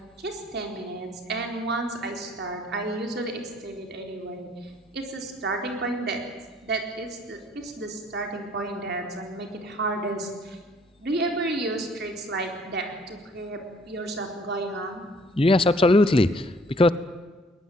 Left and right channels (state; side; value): normal; both; correlation 0.58